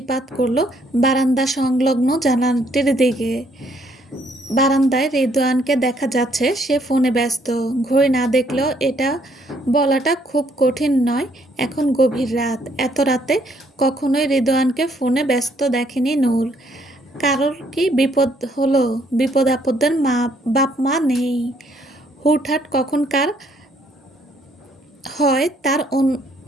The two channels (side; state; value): both; normal; correlation 0.67